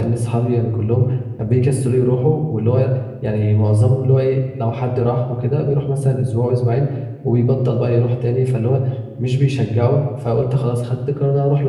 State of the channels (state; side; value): identical; both; correlation 1.00